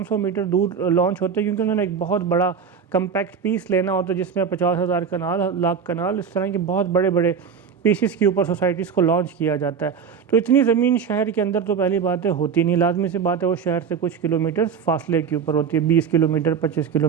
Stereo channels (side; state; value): left; quieter; 6.6 dB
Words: سو میٹر دور لانچ ہوتے ہیں، کیونکہ انہوں نے ایک بہت بڑا کمپیکٹ پیس لینا ہوتا ہے جس میں 50,000 کنال، لاکھ کنال، اس طرح کے بہت بڑے بڑے پیسز کے اوپر سوسائٹیز کو لانچ کیا جاتا ہے۔ تو اتنی زمین شہر کے اندر تو پہلی باتیں ہوتی نہیں، لازمی سی بات ہے وہ شہر سے کچھ کلومیٹر فاصلے کے اوپر ہوتی ہے، 20 کلومیٹر، 25